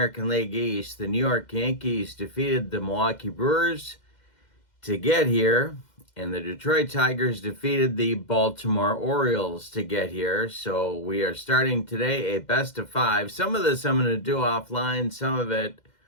League East. The New York Yankees defeated the Milwaukee Brewers to get here, and the Detroit Tigers defeated the Baltimore Orioles to get here. So we are starting today a best of five. Some of this I'm going to do offline, some of it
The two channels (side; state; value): right; late; 2.1 ms